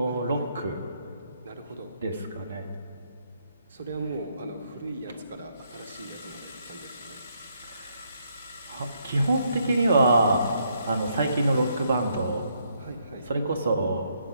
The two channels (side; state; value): both; inverted; correlation -0.73